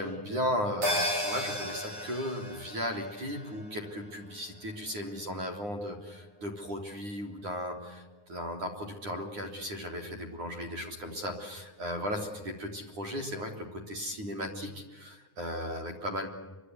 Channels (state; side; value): late; left; 9.7 ms